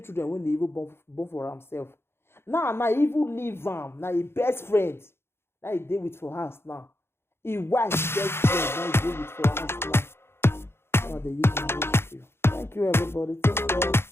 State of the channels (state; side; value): late; right; 0.12 ms